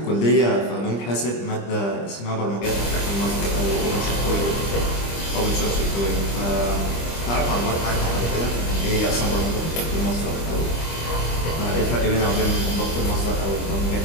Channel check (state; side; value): late; right; 25 ms